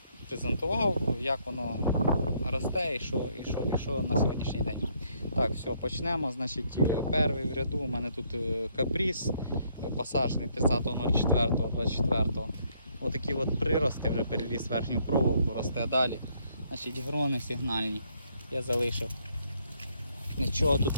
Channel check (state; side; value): inverted; both; correlation -0.69